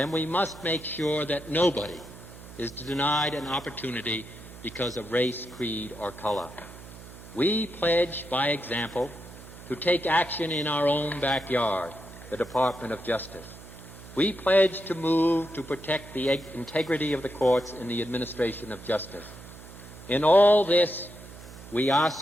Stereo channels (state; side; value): noise; right; hum, 16 dB below the sound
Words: we must make sure that nobody is denied an opportunity because of race, creed, or color. We pledge, by example, to take action in our own backyard, the Department of Justice. We pledge to move to protect the integrity of the courts in the administration of justice. In all this, We